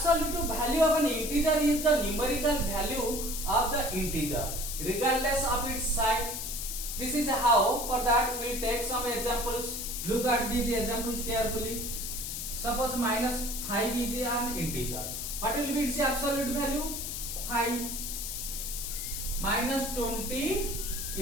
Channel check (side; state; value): left; noise; hiss, 5 dB below the sound